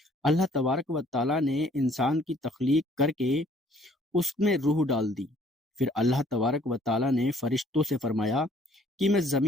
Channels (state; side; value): normal; both; correlation 0.60